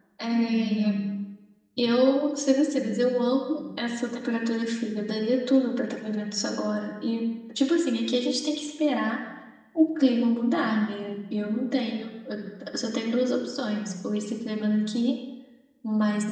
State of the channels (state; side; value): identical; both; correlation 1.00